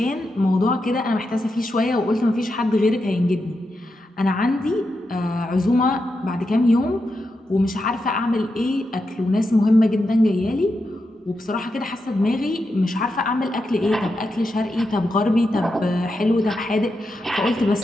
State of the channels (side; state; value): both; normal; correlation 0.87